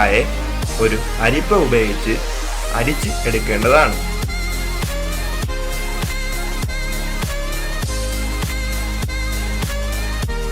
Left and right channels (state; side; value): identical; both; correlation 1.00